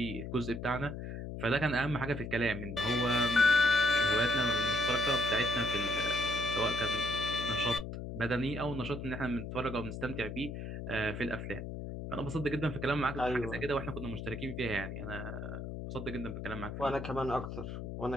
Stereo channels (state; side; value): noise; left; hum, 7 dB below the sound